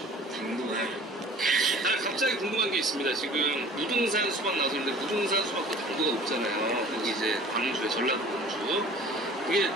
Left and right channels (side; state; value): both; normal; correlation 0.46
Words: 당도가 갑자기 궁금한 게 있습니다. 지금 무등산 수박 나왔는데 무등산 수박도 당도가 높잖아요. 거기 이제 광주에 전라도 광주. 그게